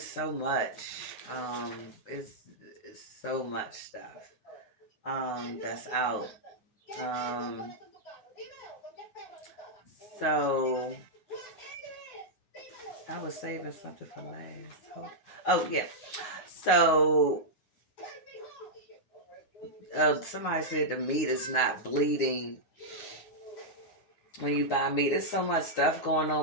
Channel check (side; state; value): right; late; 9.6 ms